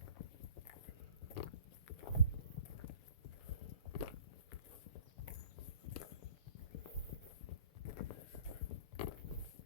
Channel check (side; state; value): right; late; 6.8 ms